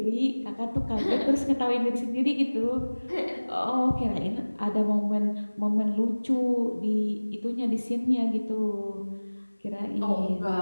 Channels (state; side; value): inverted; both; correlation -1.00